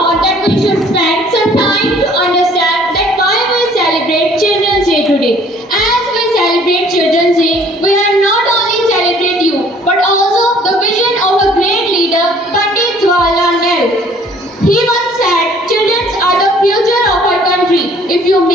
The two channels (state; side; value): normal; both; correlation 0.57